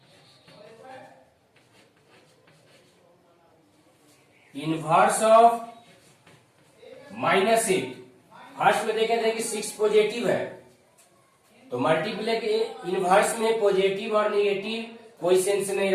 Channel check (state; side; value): identical; both; correlation 1.00